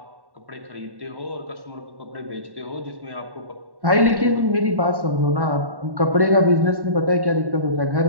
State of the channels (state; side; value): late; left; 1.1 ms